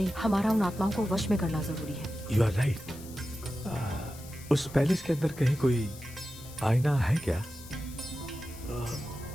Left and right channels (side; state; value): left; noise; hiss, 17 dB below the sound